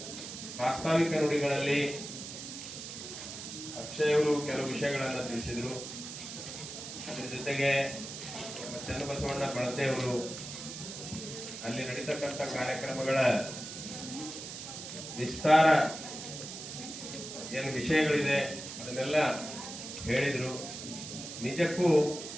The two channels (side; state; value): right; noise; hiss, 9 dB below the sound